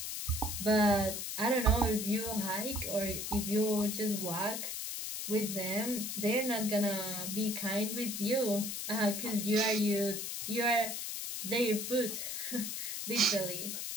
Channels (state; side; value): noise; left; hiss, 4 dB below the sound